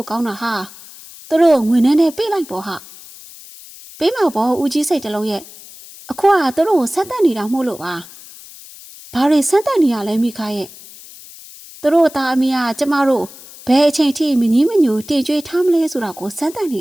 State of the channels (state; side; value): noise; left; hiss, 18 dB below the sound